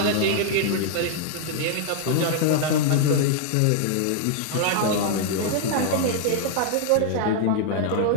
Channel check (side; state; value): both; different; correlation 0.00